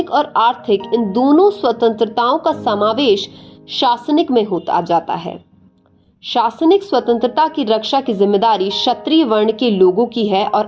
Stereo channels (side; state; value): both; identical; correlation 1.00